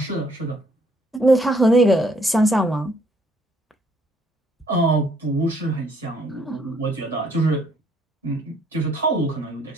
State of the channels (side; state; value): both; normal; correlation 0.66